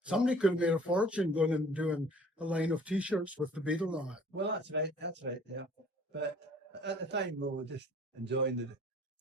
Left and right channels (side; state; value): both; normal; correlation 0.52